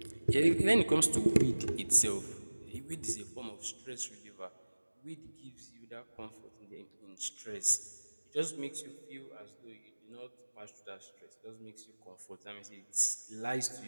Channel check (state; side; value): inverted; both; correlation -1.00